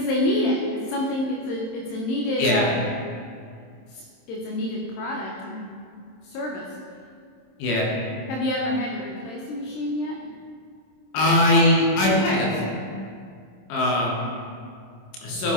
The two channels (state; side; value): late; right; 27 ms